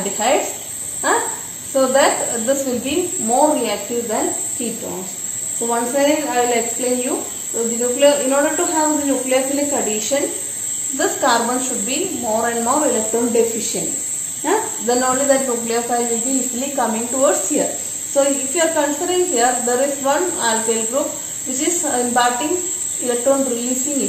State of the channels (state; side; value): identical; both; correlation 1.00